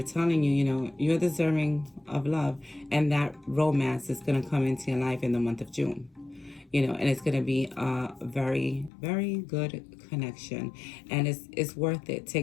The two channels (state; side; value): drops out; right; at 8.9 s